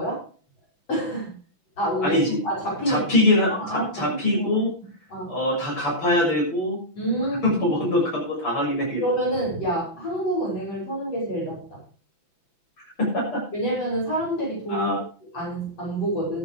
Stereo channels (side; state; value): right; late; 5.9 ms